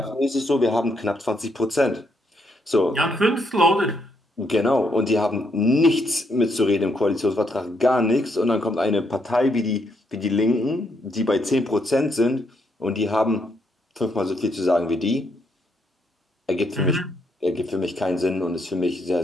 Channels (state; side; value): normal; both; correlation 0.76